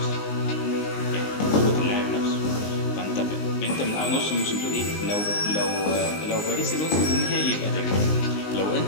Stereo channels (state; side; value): late; right; 19 ms